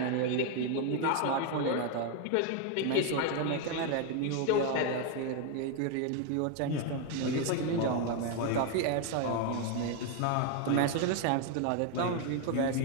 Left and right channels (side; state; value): both; different; correlation 0.01